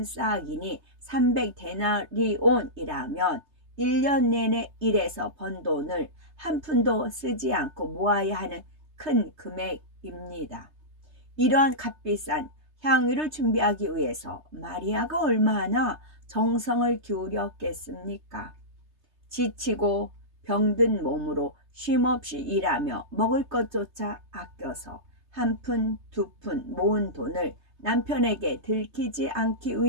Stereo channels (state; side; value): late; left; 3.3 ms